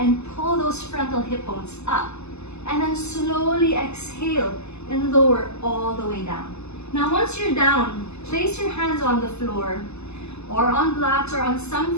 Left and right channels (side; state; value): right; late; 0.80 ms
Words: pull those frontal hip bones up. And then slowly exhale and lower all the way down. Now once you're down, place your hands on the floor or on blocks or on